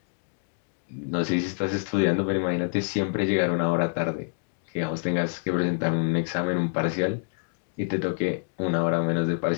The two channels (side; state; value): right; silent; digital silence